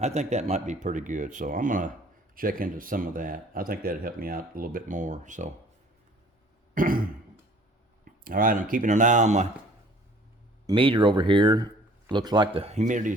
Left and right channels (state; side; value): normal; both; correlation 0.53